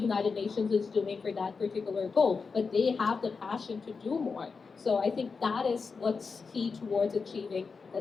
Nations is doing for that particular goal, but they have the passion to do more. So I think that is what's key towards achieving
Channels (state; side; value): quieter; right; 4.9 dB